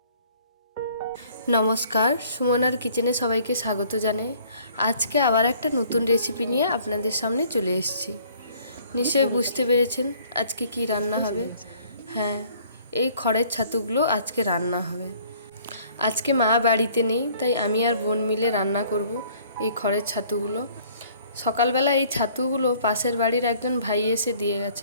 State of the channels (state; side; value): inverted; both; correlation -0.57